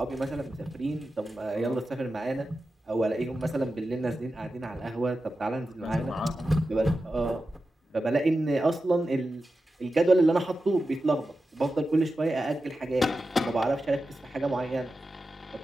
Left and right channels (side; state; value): both; normal; correlation 0.92